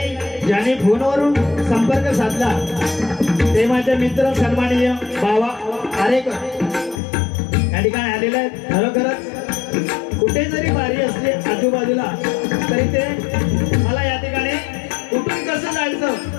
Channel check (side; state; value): right; drops out; at 7.0 s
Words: ज्यांनी फोनवरून संपर्क साधला ते माझे मित्र सन्माननीय बावा आरेकर या ठिकाणी आलेले आहेत. खरोखरच कुठे जरी बारी असली आजूबाजूला तरी ते मला या ठिकाणी कुठून कसं जायचं